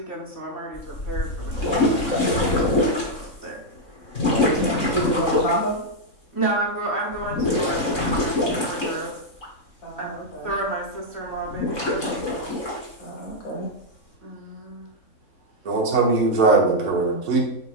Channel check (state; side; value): late; right; 3.7 ms